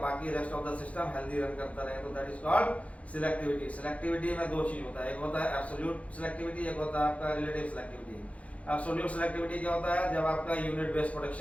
बाकी rest of the system healthy run करता रहे, तो that is called selectivity. Selectivity में 2 चीज होता है, एक होता है एब्सोल्यूट सिलेक्टिविटी, एक होता है आपका रिलेटिव सिलेक्टिविटी। एब्सोल्यूट सिलेक्टिविटी क्या होता है, जब आपका यूनिट बेस्ड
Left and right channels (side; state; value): right; late; 0.065 ms